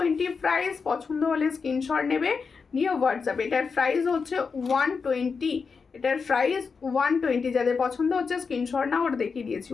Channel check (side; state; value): right; quieter; 5.2 dB